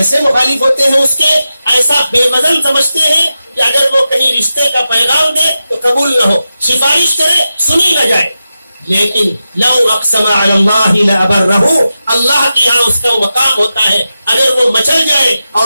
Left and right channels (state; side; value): inverted; both; correlation -0.91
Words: مخالف ہوتے ہیں اس کے, ایسا بے وزن سمجھتے ہیں کہ اگر وہ کہیں رشتے کا پیغام دے تو قبول نہ ہو, سفارش کرے سنی نہ جائے. لیکن لو اقسم علی اللہ لابرہ, اللہ کے یہاں اس کا مقام ہوتا ہے, اگر وہ مچل جائے